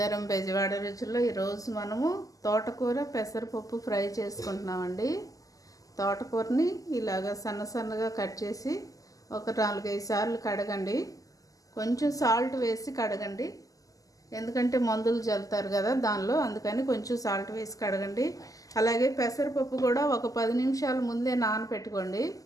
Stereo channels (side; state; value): right; late; 0.17 ms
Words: Bezawada రుచుల్లో. ఈరోజు మనము తోటకూర పెసరపప్పు ఫ్రై చేసుకుంటున్నామండి. తోటకూరని ఇలాగ సన్న సన్నగా కట్ చేసి ఒక 4-5 సార్లు కడగండి. కొంచెం సాల్ట్ వేసి కడగండి, ఎందుకంటే మందులు చల్లుతారు కదా దానిలో, అందుకని కొంచెం సాల్ట్ వేసి కడగండి. అలాగే పెసరపప్పు కూడా ఒక 10 నిమిషాల ముందే నానబెట్టుకోండి.